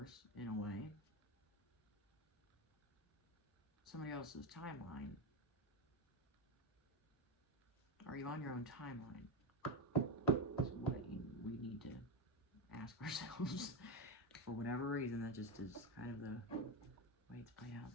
in a way? Somebody else's timeline? Are you on your own timeline? That's what we need to ask ourselves. For whatever reason, that just is kind of the way it's played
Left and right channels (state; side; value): normal; both; correlation 0.13